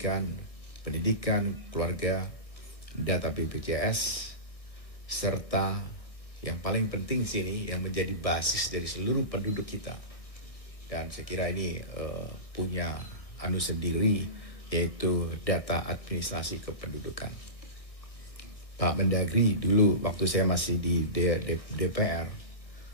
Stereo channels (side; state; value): right; late; 1.6 ms